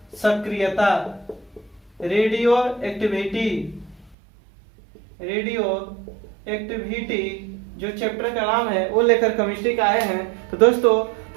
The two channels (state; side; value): drops out; left; at 4.2 s